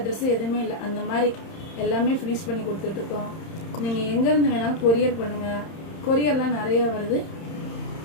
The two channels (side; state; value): right; late; 31 ms